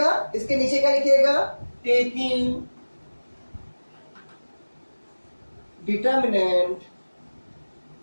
इसके नीचे क्या लिखिएगा, टेकिंग डिटर्मिनेंट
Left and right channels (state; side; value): inverted; both; correlation -1.00